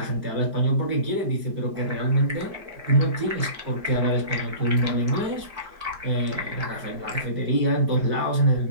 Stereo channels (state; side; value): late; left; 5.0 ms